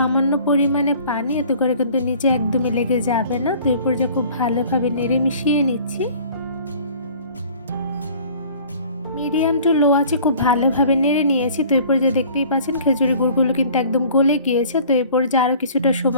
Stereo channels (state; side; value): inverted; both; correlation -0.49